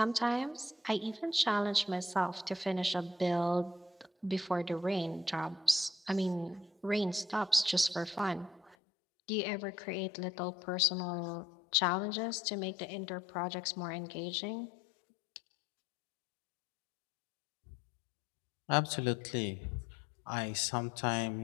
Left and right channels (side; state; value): right; drops out; at 8.8 s